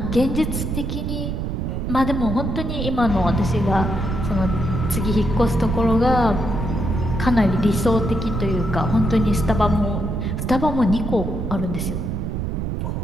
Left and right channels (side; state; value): right; noise; rumble, 2 dB below the sound